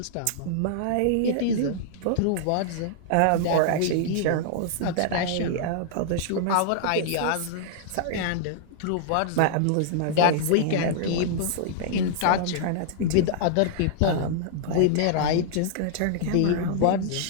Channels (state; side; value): different; both; correlation -0.01